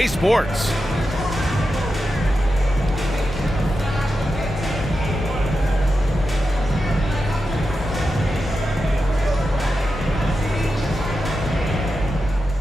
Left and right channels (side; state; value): both; normal; correlation 0.89